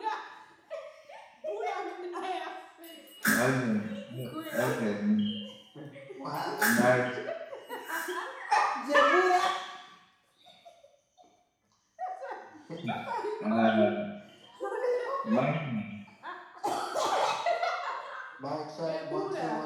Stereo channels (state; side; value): identical; both; correlation 1.00